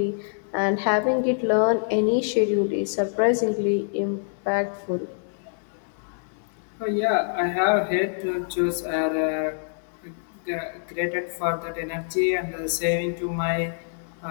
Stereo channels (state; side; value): silent; right; digital silence